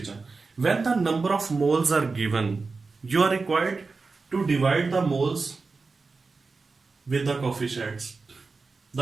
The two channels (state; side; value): quieter; left; 4.2 dB